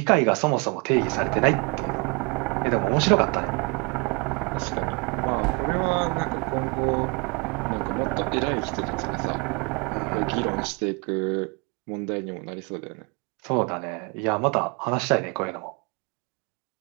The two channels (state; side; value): quieter; left; 31.2 dB